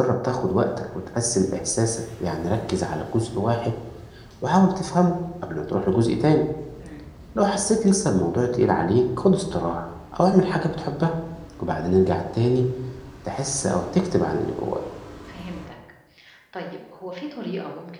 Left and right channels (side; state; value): both; identical; correlation 1.00